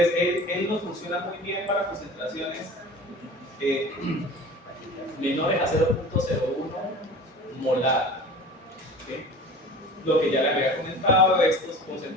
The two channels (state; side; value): normal; both; correlation 0.39